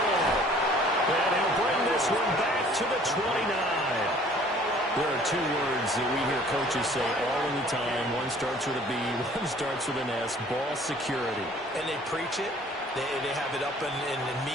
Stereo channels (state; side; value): normal; both; correlation 0.54